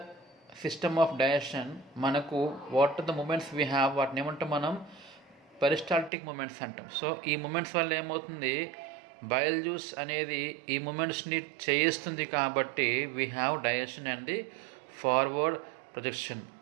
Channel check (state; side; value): drops out; left; at 6.1 s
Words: system of digestion మనకు what are the movements we have, వాటిని ఏమంటాం మనం, peristaltic movements అంటాం. So ఈ movements వల్ల ఏమవుతుంది, bile juice అనేది ఈ మూమెంట్స్ని చేయిస్తుంది. కాబట్టి we have digestion and the forward projection.